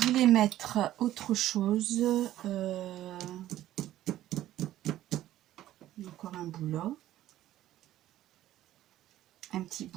mettre autre chose. Encore un bout là. Un petit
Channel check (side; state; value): left; quieter; 13.6 dB